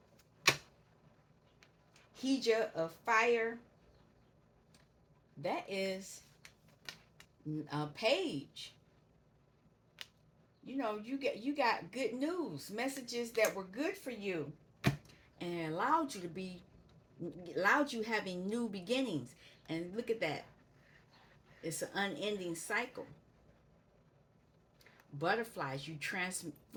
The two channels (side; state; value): both; identical; correlation 1.00